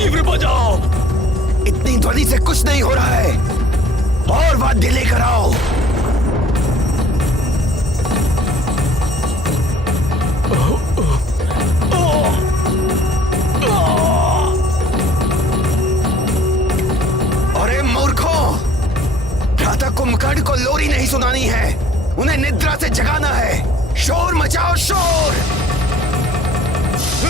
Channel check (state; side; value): normal; both; correlation 0.56